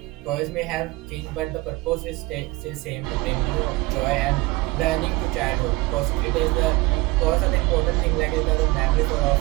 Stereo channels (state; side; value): quieter; left; 21.7 dB